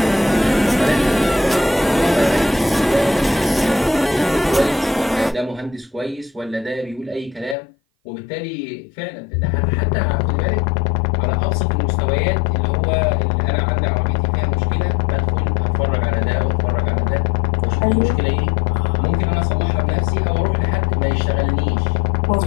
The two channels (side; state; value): right; drops out; at 7.6 s